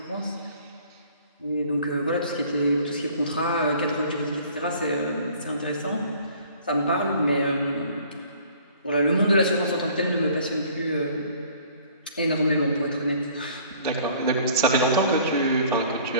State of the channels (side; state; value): both; inverted; correlation -0.53